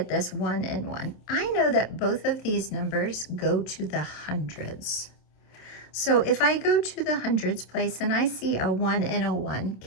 this 1 and 1. I know that both of these numbers go to the hundreds. So if I go to the hundreds place and I see a 1 and a 1,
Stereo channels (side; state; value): right; late; 27 ms